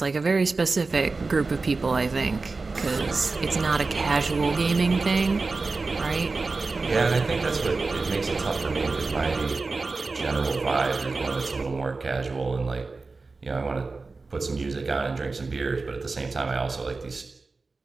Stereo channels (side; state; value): left; quieter; 3.9 dB